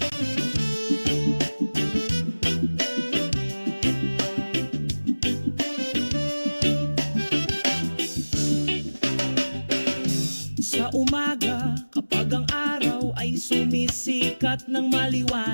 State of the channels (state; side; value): inverted; both; correlation -1.00